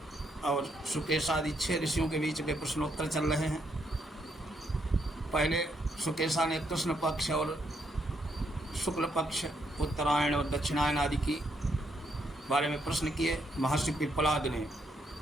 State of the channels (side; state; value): both; normal; correlation 0.76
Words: और सुकेश आदि 6 ऋषियों के बीच के प्रश्नोत्तर चल रहे हैं। पहले सुकेशा ने कृष्ण पक्ष और शुक्ल पक्ष, उत्तरायण और दक्षिणायन आदि की बारे में प्रश्न किए। महर्षि पिप्पलाद ने